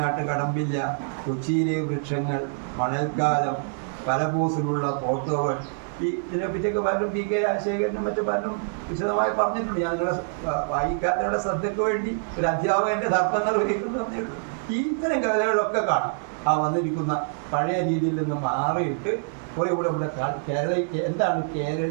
കടമ്പില്ല, കൊച്ചിയിലെ വൃക്ഷങ്ങൾ, മണൽക്കാലം, പലപോസിലുള്ള ഫോട്ടോകൾ, ഇതിനെപ്പറ്റിയൊക്കെ പലരും PK രാജശേഖരനും മറ്റു പലരും വിശദമായി പറഞ്ഞിട്ടുണ്ട്. ഞാൻ നിങ്ങളുടെ വായിക്കാത്തവരുടെ ശ്രദ്ധയ്ക്ക് വേണ്ടി ഒരു അധ്യാപകൻ്റെ ധർമ്മങ്ങൾ ഒരുക്കുന്നതേ ഉള്ളൂ. ഇത്തരം കവിതകളൊക്കെ കാണും. ആ വന്നിരിക്കുന്ന പഴയ രീതിയിൽ നിന്ന് മാറിയിട്ട് കുറേ കൂടെ എന്താണ്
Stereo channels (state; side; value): silent; left; digital silence